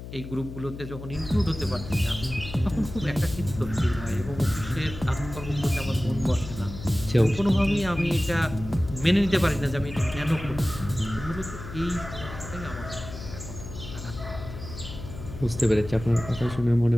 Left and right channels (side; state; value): left; noise; hum, 11 dB below the sound